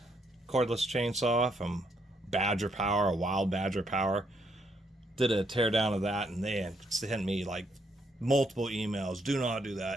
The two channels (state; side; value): normal; both; correlation 0.74